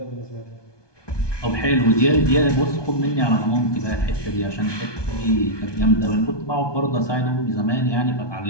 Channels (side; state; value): right; late; 1.2 ms